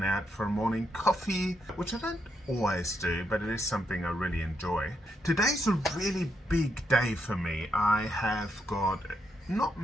out for a morning coffee, which I don't always do, but it is something I really enjoy. Today's a really big day for me. I have got not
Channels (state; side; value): normal; both; correlation 0.80